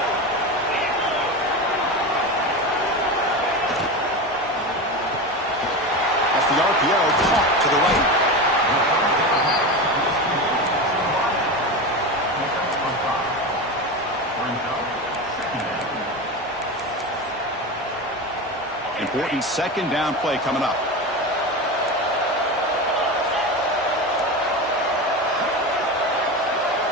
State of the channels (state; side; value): normal; both; correlation 0.23